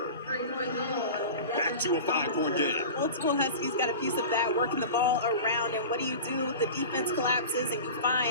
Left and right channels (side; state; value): both; inverted; correlation -0.33